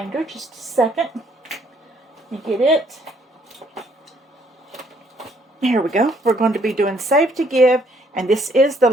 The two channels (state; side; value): normal; both; correlation 0.66